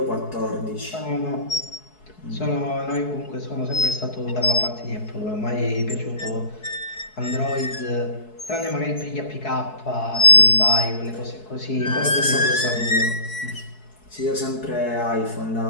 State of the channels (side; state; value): right; late; 4.7 ms